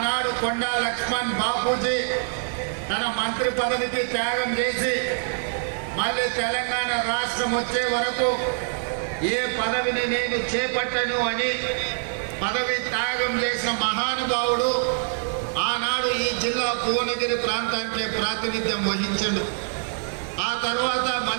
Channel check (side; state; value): left; silent; digital silence